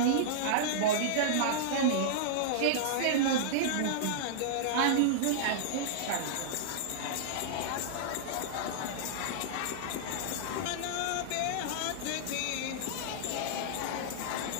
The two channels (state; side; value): different; both; correlation -0.02